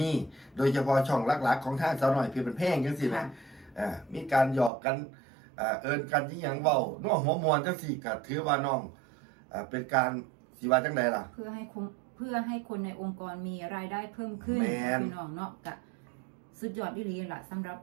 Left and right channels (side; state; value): left; drops out; at 4.7 s